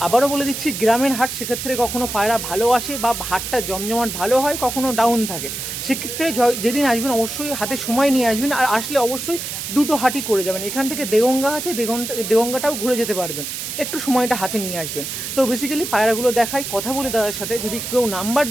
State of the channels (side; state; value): right; noise; hiss, 6 dB below the sound